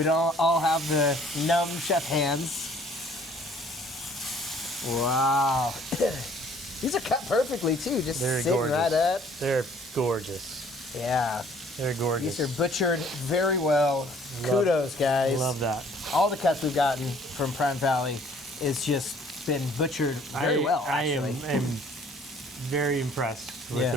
don't all have the numb chef hands. Wow. These are cut perfectly too, just They're sitting gorgeous. right up. They're gorgeous. Yeah. They're gorgeous. These are butchered very well. Kudos, guys. Love that. All the cuts we've gotten from Prime Valley is just been butchered very well, I actually. am very impressed with Yeah. the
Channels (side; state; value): both; normal; correlation 0.57